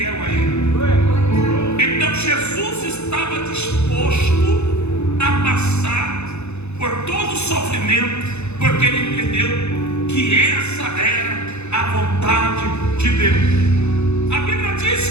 a ele. Então Jesus estava disposto a passar por todo o sofrimento, porque ele entendeu que essa era a vontade de Deus. A Bíblia diz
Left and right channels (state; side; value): late; right; 0.81 ms